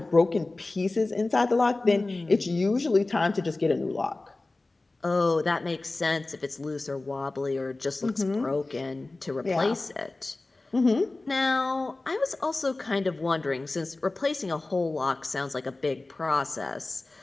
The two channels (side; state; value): right; quieter; 3.1 dB